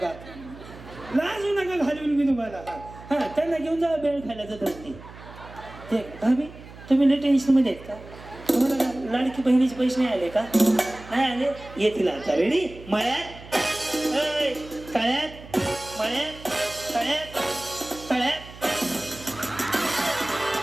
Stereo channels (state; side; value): noise; right; hum, 17 dB below the sound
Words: लाजू नका घालून मी तुम्हाला. हा त्यांना घेऊन जा बेळ खायला जात असते. ते भाभी तुम्ही लय टेन्शन मध्ये आहेत का? तुम्हाला लाडकी बहिणीचे पैसे नाही आले का? नाही आले येतील आता. रेडी? मळ्यात तळ्यात. मळ्यात तळ्यात. तळ्यात.